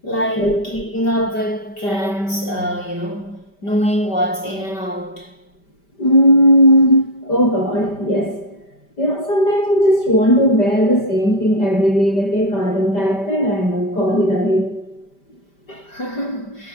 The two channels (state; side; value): late; right; 5.1 ms